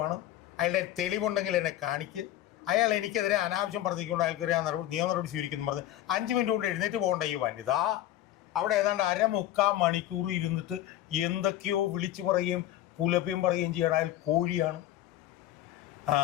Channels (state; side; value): quieter; right; 13.2 dB